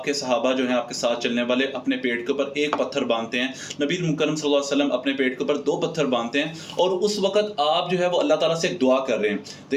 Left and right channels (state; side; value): identical; both; correlation 1.00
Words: کے صحابہ جو ہیں، آپ کے ساتھ چلنے والے، اپنے پیٹ کے اوپر ایک پتھر باندھتے ہیں. نبی مکرم صلی اللہ علیہ وسلم اپنے پیٹ کے اوپر 2 پتھر باندھتے ہیں اور اس وقت آپ جو ہے وہ اللہ تعالیٰ سے ایک دعا کر رہے ہیں.